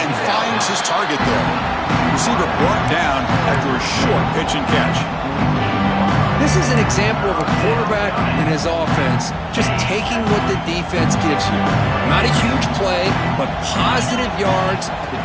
finds his target there. Receiver brought down after a short pitch and catch. This is an example of a quarterback and his offense just taking what the defense gives you. Not a huge play, but positive yards.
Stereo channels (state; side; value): identical; both; correlation 1.00